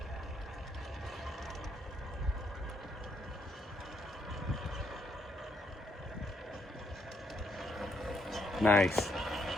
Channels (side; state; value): both; normal; correlation 0.75